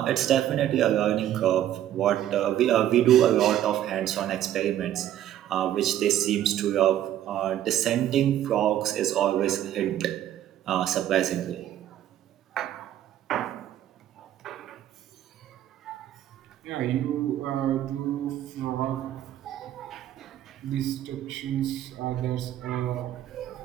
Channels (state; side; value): quieter; left; 11.8 dB